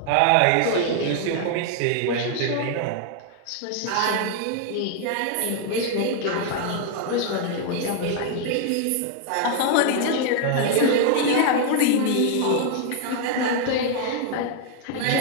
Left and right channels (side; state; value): both; different; correlation 0.00